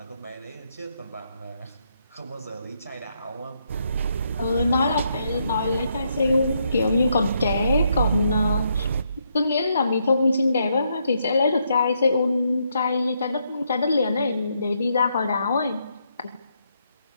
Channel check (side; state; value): both; inverted; correlation -0.77